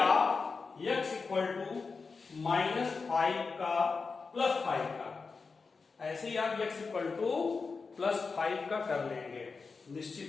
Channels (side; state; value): right; quieter; 4.6 dB